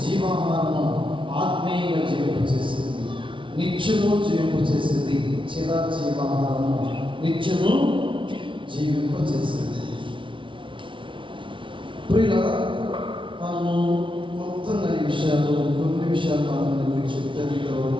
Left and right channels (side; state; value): left; late; 0.25 ms